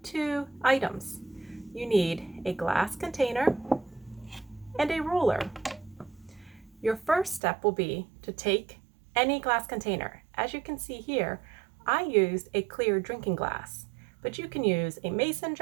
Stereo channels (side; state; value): left; drops out; at 7.4 s